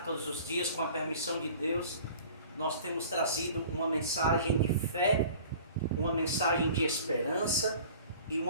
todos os dias, com a permissão de Deus, nós temos trazido uma mensagem de fé, uma mensagem de esperança e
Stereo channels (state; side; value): inverted; both; correlation -0.45